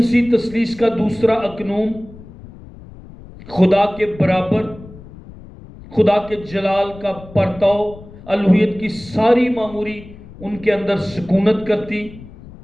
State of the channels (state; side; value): noise; left; rumble, 18 dB below the sound